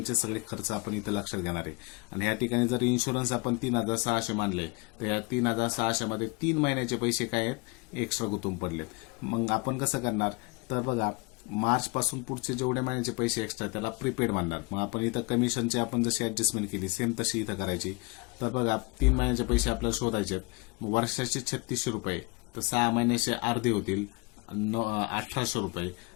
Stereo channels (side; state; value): right; quieter; 28.0 dB